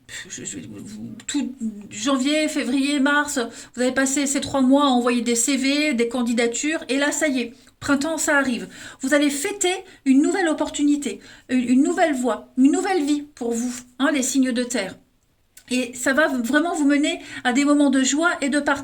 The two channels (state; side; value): identical; both; correlation 1.00